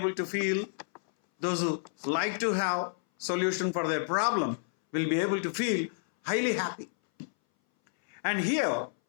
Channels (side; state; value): right; silent; 58 dB below the other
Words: to feel, those who like to have solution for their problem will be able to feel highly happy. And here,